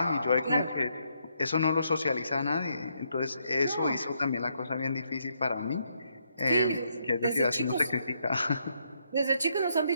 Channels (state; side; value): inverted; both; correlation -0.76